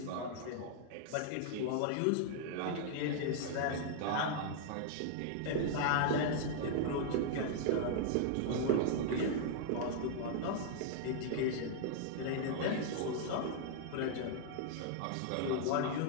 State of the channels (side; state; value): both; different; correlation 0.00